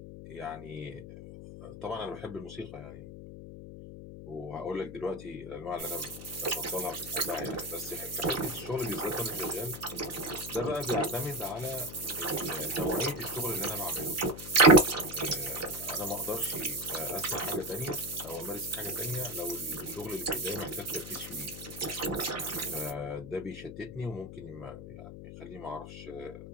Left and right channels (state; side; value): noise; left; hum, 11 dB below the sound